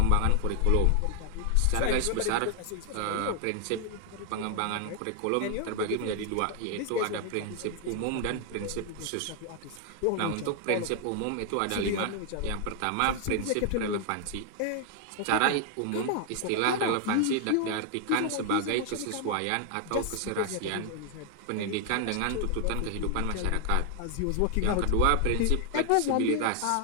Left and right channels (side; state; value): both; different; correlation 0.00